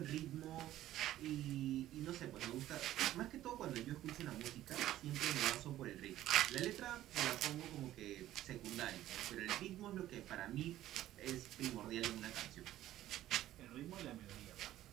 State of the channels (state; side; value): quieter; left; 13.7 dB